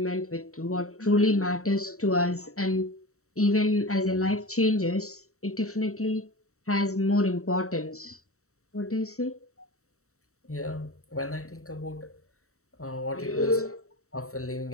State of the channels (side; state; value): right; late; 0.64 ms